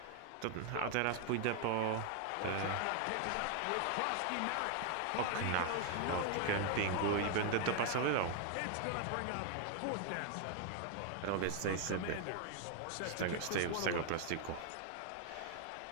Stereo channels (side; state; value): both; different; correlation 0.00